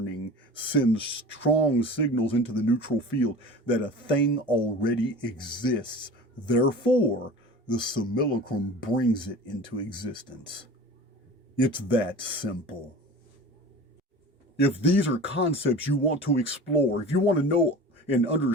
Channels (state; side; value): normal; both; correlation 0.37